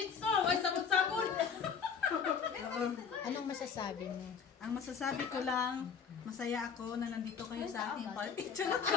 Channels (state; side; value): quieter; right; 6.6 dB